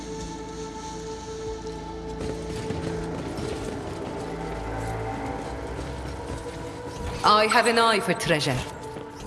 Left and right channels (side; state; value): both; identical; correlation 1.00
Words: I have an eye for treasure.